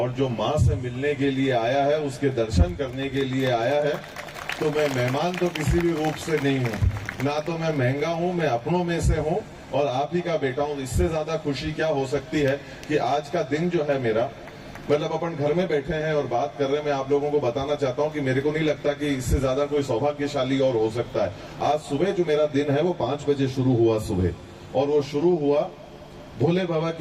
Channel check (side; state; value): both; identical; correlation 1.00